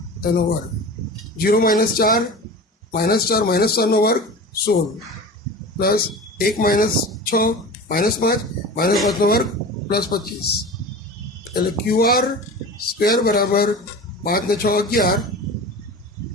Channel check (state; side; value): normal; both; correlation 0.33